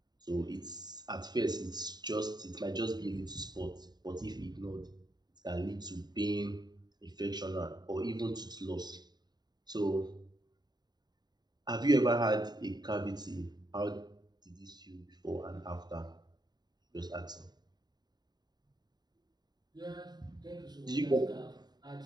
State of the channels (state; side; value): late; left; 0.20 ms